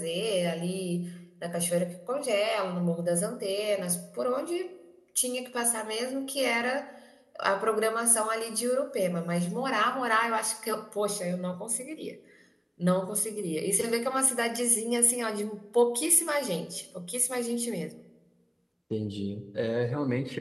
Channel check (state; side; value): identical; both; correlation 1.00